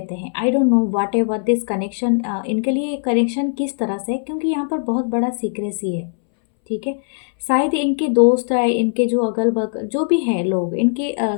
हैं। I don't know what ever this connection, इनके लिए कनेक्शन किस तरह से, क्योंकि यहाँ पर बहुत बड़ा सीक्रेसी है। ठीक है, शायद इनके दोस्त है, इनके जो अगल बगल जो भी हैं लोग इनके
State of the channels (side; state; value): right; silent; 65 dB below the other